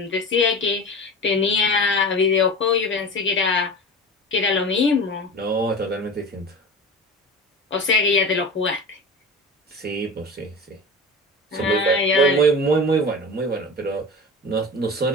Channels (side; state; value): both; normal; correlation 0.32